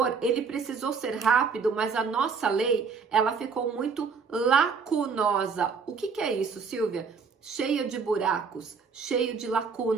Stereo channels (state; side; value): quieter; left; 5.4 dB